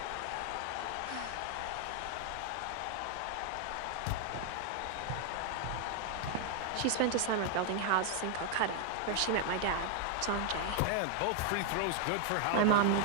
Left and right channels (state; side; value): different; both; correlation 0.00